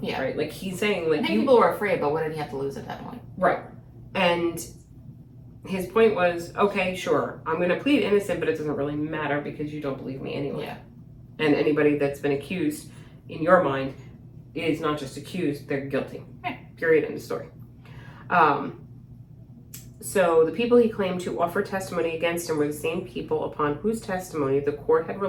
Right? Like, he's saying, like, I think people were afraid, but what did he have to lose at that point? Right. And his point was, okay, sure, I'm going to plead innocent, but it doesn't really matter because you don't believe me anyway. Yeah. And anybody that's been accused, in your mind, is not just accused, they're guilty. Yeah. Period, end of story. So the people he claimed to offer testimony against him were the same people upon whose testimony the court had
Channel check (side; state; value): both; identical; correlation 1.00